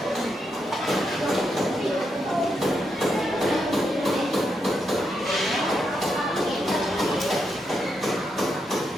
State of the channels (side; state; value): both; normal; correlation 0.82